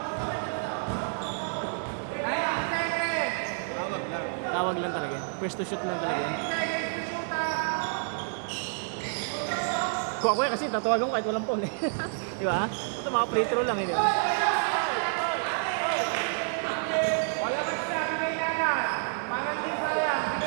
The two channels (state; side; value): silent; left; digital silence